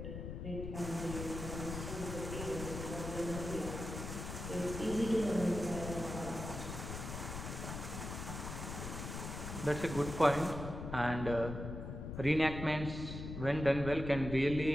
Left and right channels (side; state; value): left; noise; rumble, 7 dB below the sound